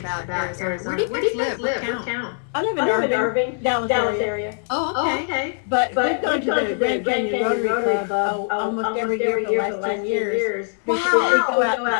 Arizona. Where do you guys live? What town? I live in Irving, Dallas area. Oh, okay. But we've gone to the Grand Canyon Rotary Club almost every year for the last 10 years. Wow. Because we go out to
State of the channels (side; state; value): right; silent; digital silence